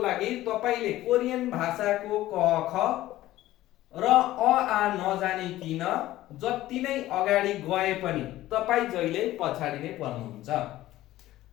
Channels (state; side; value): quieter; right; 15.4 dB